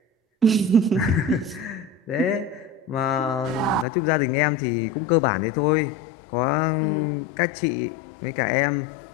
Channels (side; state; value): right; drops out; at 3.9 s